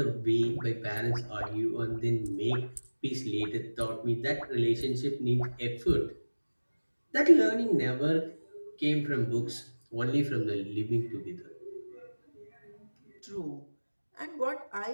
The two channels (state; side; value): inverted; both; correlation -1.00